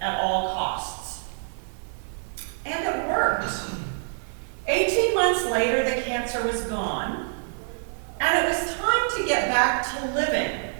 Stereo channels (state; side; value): silent; left; digital silence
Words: at all costs. And it worked. 18 months later, the cancer was gone, and it was time to get back to living.